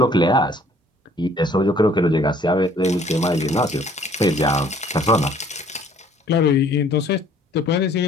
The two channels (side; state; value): both; normal; correlation 0.57